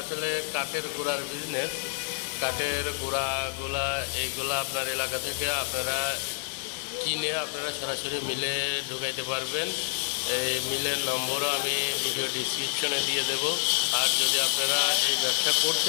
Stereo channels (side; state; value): right; silent; digital silence